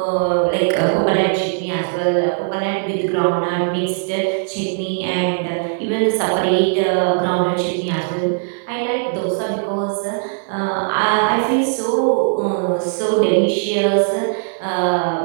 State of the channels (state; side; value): silent; left; digital silence